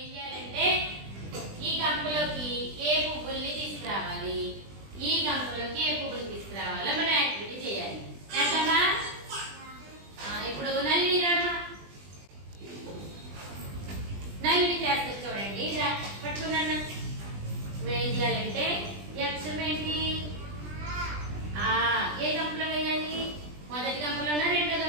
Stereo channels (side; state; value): left; late; 20 ms